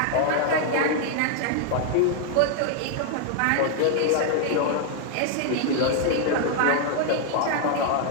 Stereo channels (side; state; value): both; different; correlation 0.00